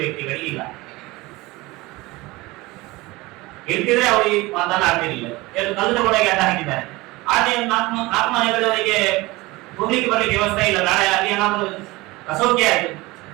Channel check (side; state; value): left; quieter; 21.4 dB